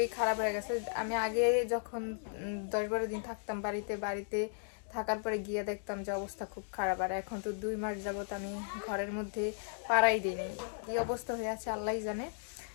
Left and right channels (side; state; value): right; silent; digital silence